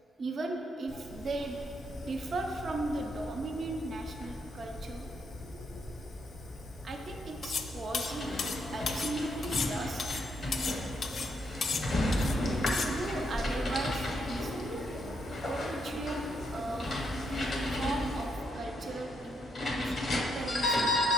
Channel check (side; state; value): both; normal; correlation 0.77